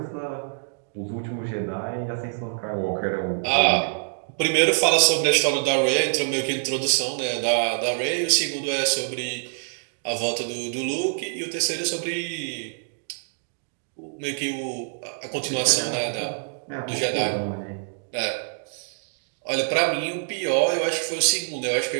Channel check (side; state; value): left; silent; digital silence